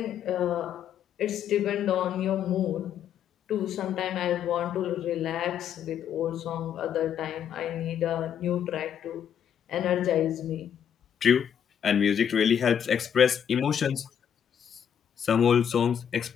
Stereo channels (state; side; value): quieter; right; 8.7 dB